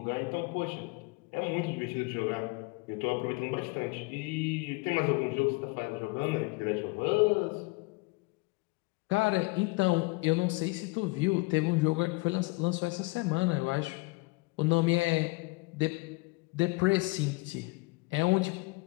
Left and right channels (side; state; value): right; quieter; 25.6 dB